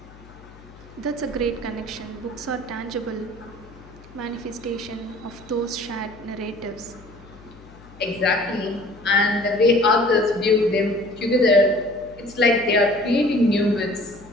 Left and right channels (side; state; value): left; noise; hum, 22 dB below the sound